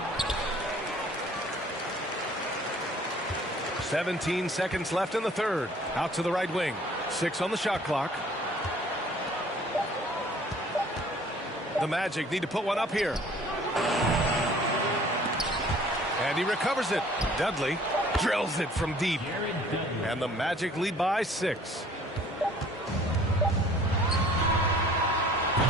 17 seconds left in the third. Out to the right wing. 6 on the shot clock. The Magic need to put one up here. And he recovers it. Dudley drills it from deep. And the Magic lead by 6.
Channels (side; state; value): both; normal; correlation 0.54